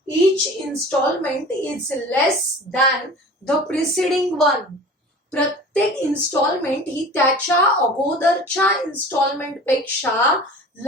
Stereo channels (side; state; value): both; normal; correlation 0.40